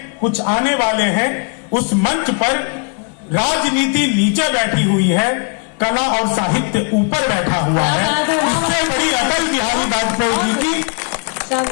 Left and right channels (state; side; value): quieter; right; 36.9 dB